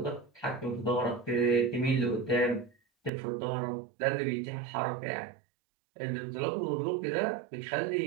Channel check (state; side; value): drops out; left; at 3.1 s